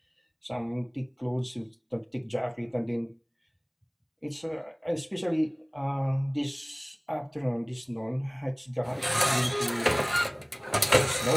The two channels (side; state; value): both; identical; correlation 1.00